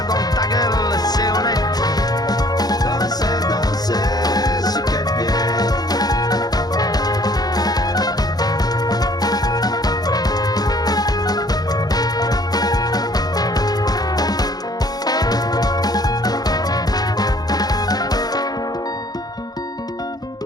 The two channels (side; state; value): right; late; 0.19 ms